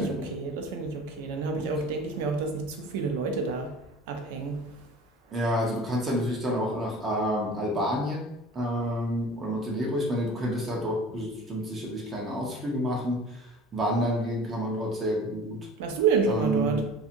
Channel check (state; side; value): normal; both; correlation 0.42